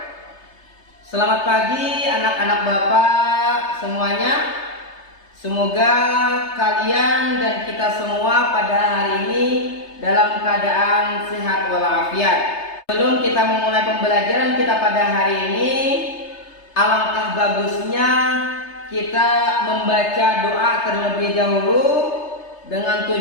Selamat pagi anak-anak bapak semuanya. Semoga kalian dan kita semua pada hari ini dalam keadaan sehat walafiat. Sebelum kita memulai pembelajaran kita pada hari ini, alangkah bagusnya kita membaca doa terlebih dahulu dengan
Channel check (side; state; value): right; late; 3.3 ms